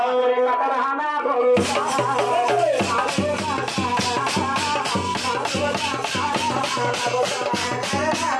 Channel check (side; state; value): both; identical; correlation 1.00